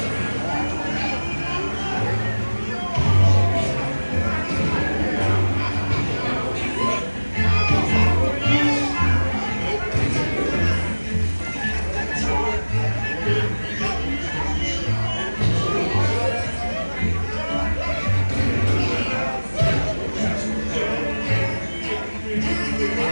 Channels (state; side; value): inverted; both; correlation -1.00